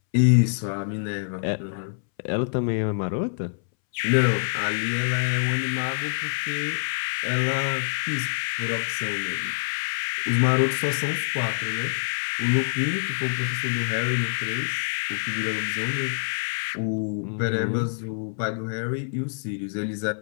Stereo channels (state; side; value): silent; right; 61 dB below the other